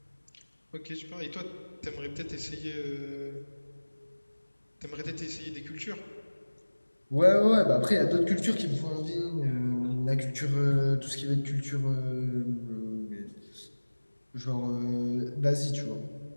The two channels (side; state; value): both; inverted; correlation -1.00